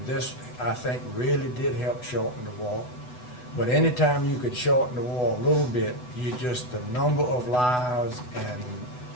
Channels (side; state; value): right; late; 8.0 ms